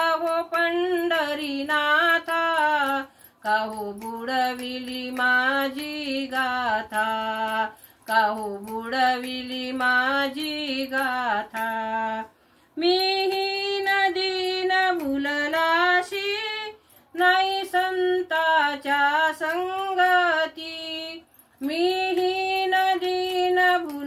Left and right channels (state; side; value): identical; both; correlation 1.00